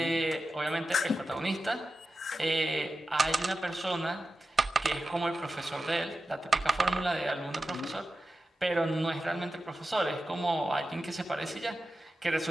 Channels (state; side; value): normal; both; correlation 0.92